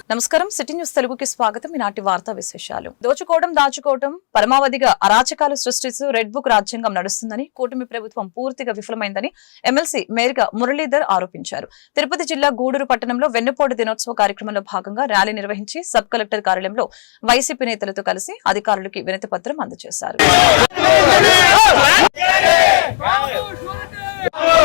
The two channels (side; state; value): right; silent; digital silence